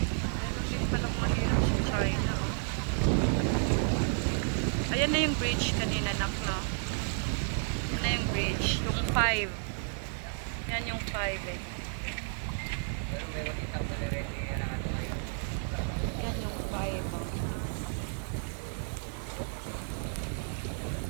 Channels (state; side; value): silent; left; 57 dB below the other